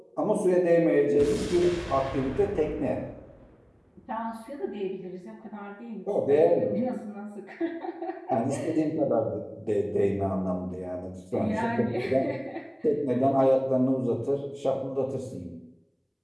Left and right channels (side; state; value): both; identical; correlation 1.00